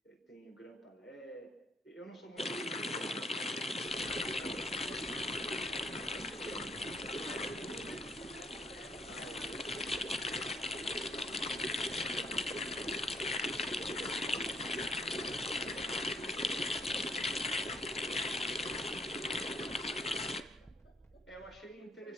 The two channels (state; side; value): normal; both; correlation 0.69